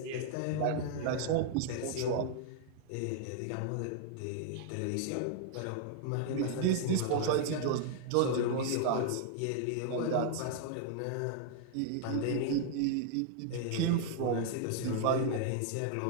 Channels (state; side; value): different; both; correlation -0.01